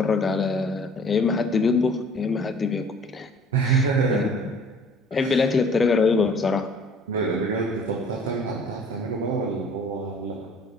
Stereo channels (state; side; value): normal; both; correlation 0.52